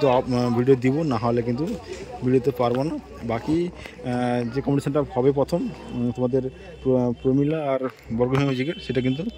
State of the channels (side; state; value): both; identical; correlation 1.00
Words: তো ভিডিও দিব, না হলে কিন্তু ভিডিওতে পারবো না। বাকি যে কম্পিটিশানটা হবে প্রথম তোমাদের প্রমিলা আর বর্গভূমি মিউজিকের, সেটা কিন্তু